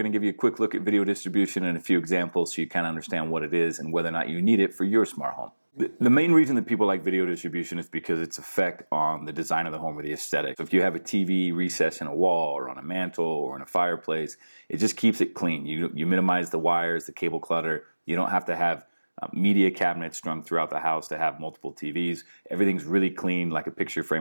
to give you a quick look at video distribution and a few examples so you kind of understand what it is and whether or not you need it for your smart home. The main reason that people like video distribution is because its effect on the design of the home or the aesthetic. So if you have a TV recessed in a wall or on a mantle or in a fireplace, it just keeps it clean. You minimize the wires, the cable clutter. You don't have to have media cabinets strung throughout the house to have multiple TVs. Everything's really clean, like a picture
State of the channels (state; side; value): inverted; both; correlation -1.00